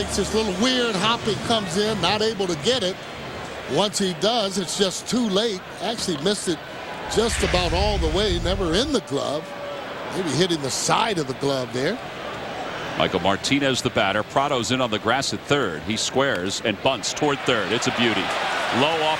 this little weird hop. It comes in, not able to get it. Once he does, it's just too late. Actually missed it just about all the way, never in the glove. Maybe hitting the side of the glove there. Michael Martinez, the batter. Prado's in on the grass at third. He squares and bunts toward third. It's a beauty. Low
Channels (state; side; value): identical; both; correlation 1.00